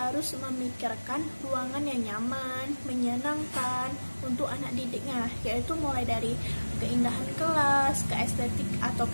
memikirkan ruangan yang nyaman, menyenangkan untuk anak didiknya, yaitu mulai dari keindahan kelas,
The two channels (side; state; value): both; inverted; correlation -1.00